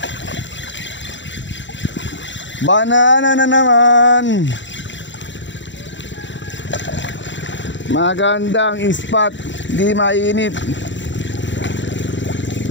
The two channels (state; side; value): late; right; 0.54 ms